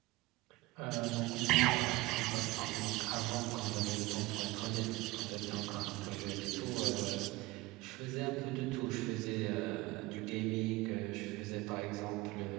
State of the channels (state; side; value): quieter; left; 20.5 dB